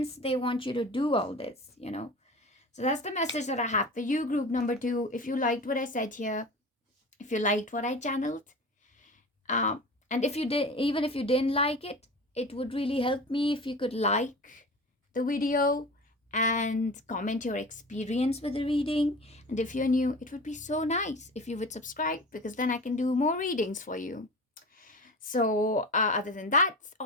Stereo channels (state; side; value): normal; both; correlation 0.34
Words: they want you to do all this, So that's the message that I have for you, group number 2. If you liked what I said here, if you liked what I channeled, and if you did, even if you didn't like it, it would really help me if you could like the video and comment your experience with the reading. And if you're new, it would be so nice if you would subscribe, because then I can do more readings for you. So other than that,